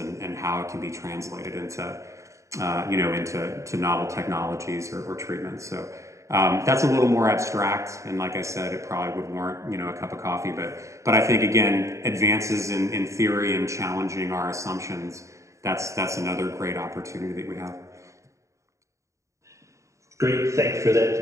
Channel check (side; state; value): left; late; 0.15 ms